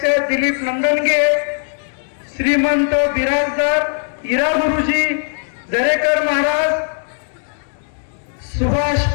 दिलीप नंदनगे, श्रीमंत बिराजदार, हिरा गुरुजी, दरेकर महाराज, सुभाष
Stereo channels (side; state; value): right; silent; 59 dB below the other